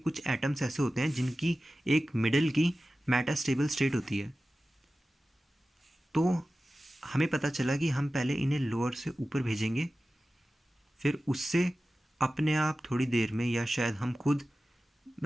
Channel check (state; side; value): normal; both; correlation 0.95